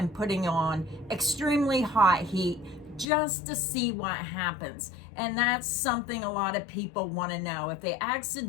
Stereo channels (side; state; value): right; drops out; at 3.1 s